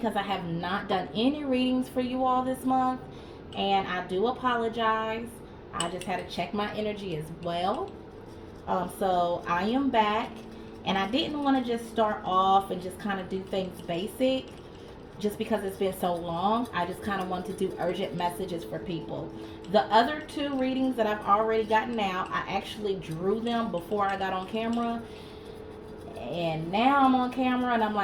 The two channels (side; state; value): both; identical; correlation 1.00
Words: I have not done any readings for you all this month, and I do apologize. I just had to check my energy as well. So I am back, and I didn't want to just start off and just kind of do things basic just because it's been so long. I just kind of want to do urgent messages for people. The other two readings that I've already gotten out, I actually drew them before I got on camera, and now I'm on camera and I'm